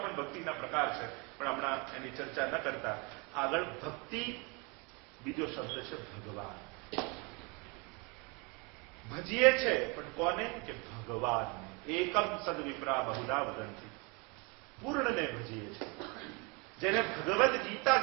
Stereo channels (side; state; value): left; quieter; 29.9 dB